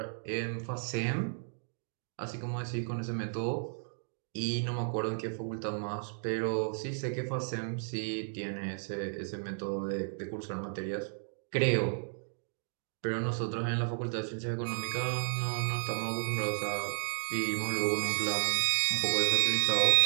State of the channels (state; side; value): silent; left; digital silence